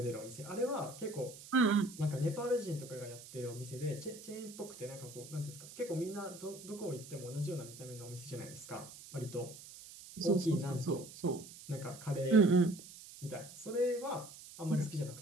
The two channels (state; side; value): noise; right; hiss, 16 dB below the sound